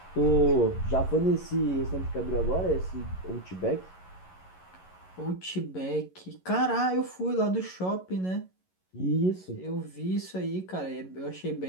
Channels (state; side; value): late; right; 11 ms